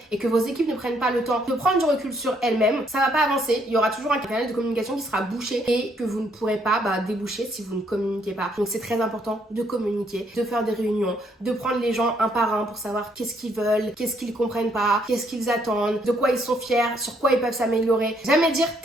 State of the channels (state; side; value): normal; both; correlation 0.70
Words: et que vos équipes ne prennent pas le temps de prendre du recul sur elles-mêmes, ça va pas avancer. Il y aura toujours un canal de communication qui sera bouché et que vous ne pourrez pas déboucher si vous ne communiquez pas. Donc c'est très important de communiquer, de faire des réunions, de prendre les gens un par un pour savoir qu'est-ce qu'ils veulent, qu'est-ce qu'ils comprennent pas, qu'est-ce qu'ils attendent, de quoi ils sont fiers, sur quoi ils peuvent s'améliorer. Jamais dire